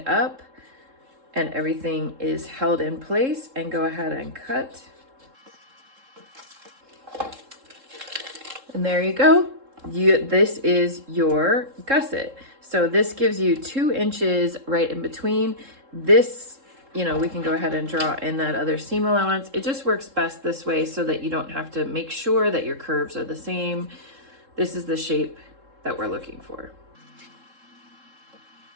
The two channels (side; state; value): left; late; 3.7 ms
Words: up and everything is held in place, and go ahead and cut. And there you go. This is your gusset. So this gives you 2 inches right in between. This, you know, we can go ahead and draw in that other seam allowance. It just works best this way so that you don't have to make sure that your curves are the same. This is the shape that we're looking for.